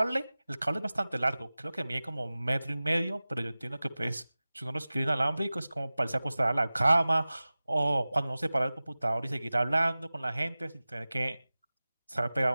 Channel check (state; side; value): inverted; both; correlation -0.97